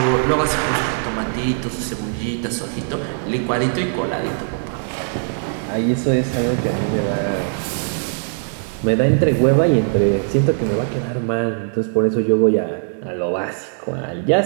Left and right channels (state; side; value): silent; left; digital silence